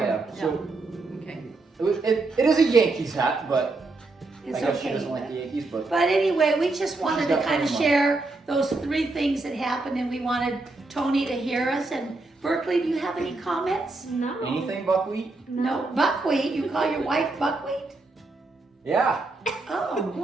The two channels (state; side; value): quieter; left; 3.3 dB